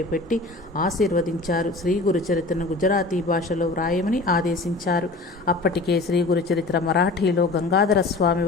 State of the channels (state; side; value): quieter; right; 3.2 dB